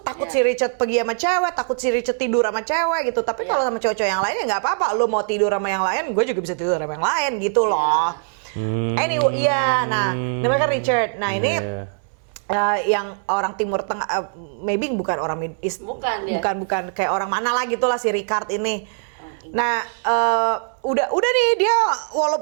si Richard pergi sama cewek, takut si Richard tidur sama cewek gitu. Tapi kalau sama cowok-cowok yang lain ya nggak apa-apa. Lu mau tidur sama yang lain, gue juga bisa tidur sama yang lain gitu loh. Anyway, namanya kan Richard. Nah, ini yang orang Timur Tengah, maybe bukan orang Middle East, bukan kayak orang mana lah gitulah si Richard ini. Nah, udah nih dia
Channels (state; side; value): silent; left; 63 dB below the other